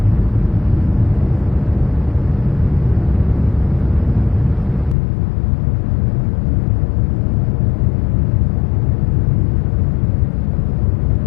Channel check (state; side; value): drops out; right; at 5.0 s